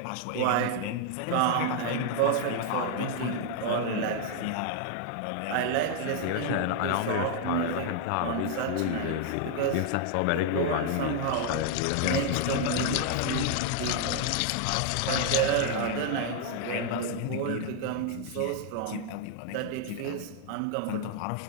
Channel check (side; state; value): both; different; correlation 0.00